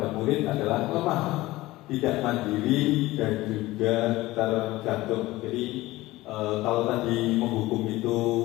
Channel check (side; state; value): right; quieter; 18.4 dB